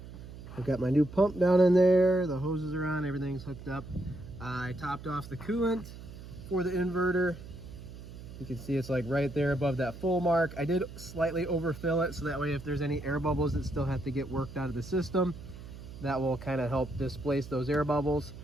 I've got my new pump down in there, the hoses are on, everything's hooked up. I topped off the coolant for the inverter. You can see it's like right there above that full mark. I did slightly overfill it, so that way if there's any air bubbles that still have to get worked out of the system, that will kind of help displace those air bubbles.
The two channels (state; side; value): noise; right; hum, 14 dB below the sound